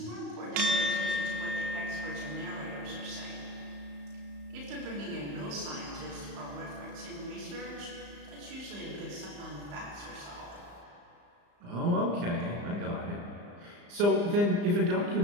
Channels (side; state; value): left; late; 35 ms